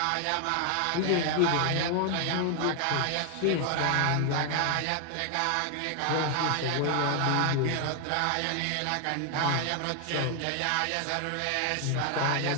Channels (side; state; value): both; different; correlation 0.00